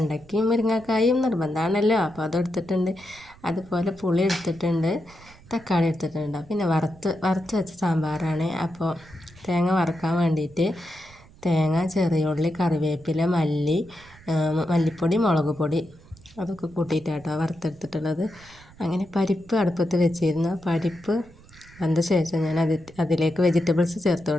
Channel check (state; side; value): noise; right; rumble, 23 dB below the sound